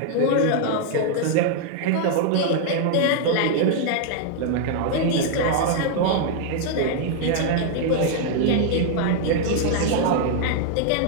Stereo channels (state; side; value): different; both; correlation 0.00